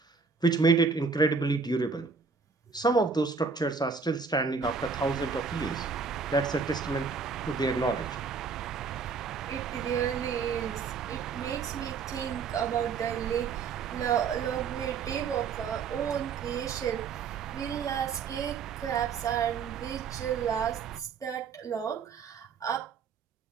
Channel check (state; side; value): quieter; left; 5.3 dB